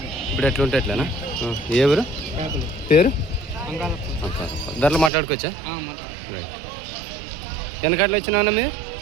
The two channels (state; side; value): drops out; left; at 5.1 s